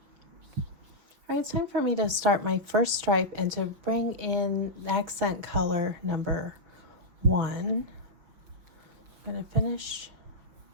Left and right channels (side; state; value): left; late; 5.7 ms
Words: All right, it's time for me to start my first stripe and to bring in accent color number 1. I'm going to finish,